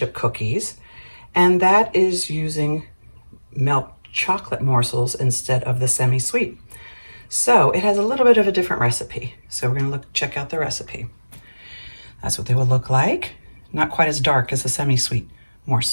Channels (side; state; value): both; inverted; correlation -1.00